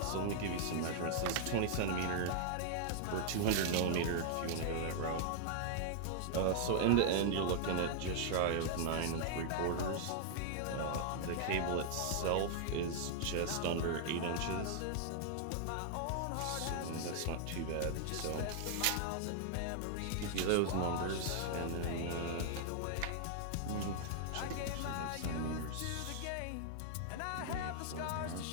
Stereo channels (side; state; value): both; different; correlation -0.01